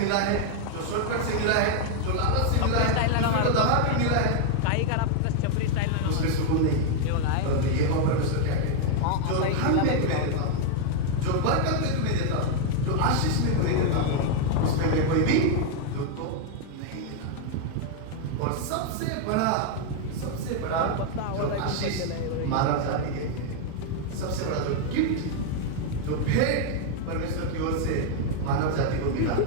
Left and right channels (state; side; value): different; both; correlation 0.00